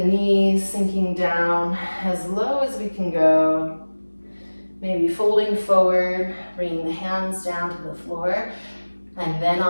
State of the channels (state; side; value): inverted; both; correlation -1.00